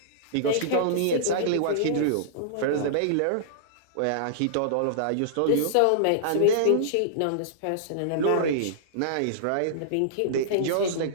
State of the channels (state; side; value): different; both; correlation -0.02